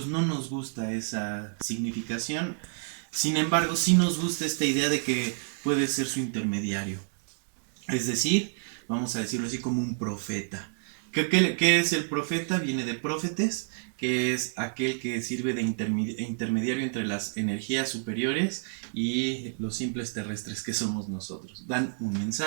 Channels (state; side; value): silent; left; 59 dB below the other